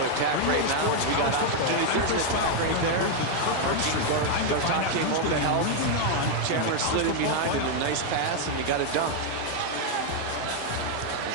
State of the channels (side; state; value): both; different; correlation 0.00